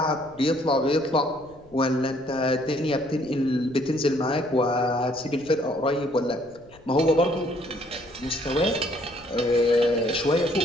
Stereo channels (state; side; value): noise; left; rumble, 25 dB below the sound